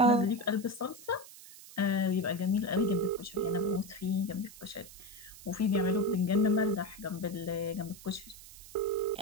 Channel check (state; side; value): noise; right; hiss, 17 dB below the sound